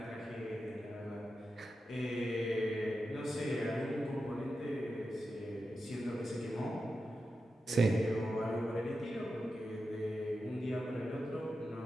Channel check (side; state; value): both; normal; correlation 0.90